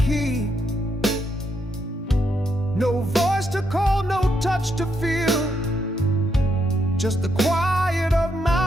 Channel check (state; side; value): normal; both; correlation 0.78